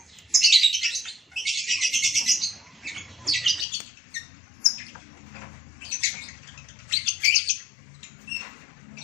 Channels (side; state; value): right; drops out; at 3.7 s